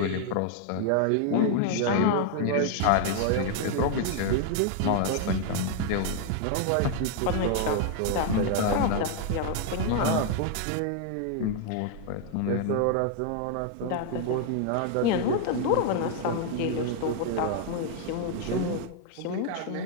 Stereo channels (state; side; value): different; both; correlation 0.00